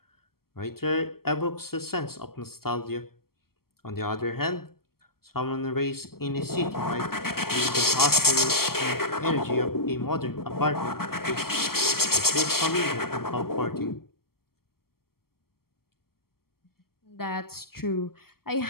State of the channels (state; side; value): late; right; 0.94 ms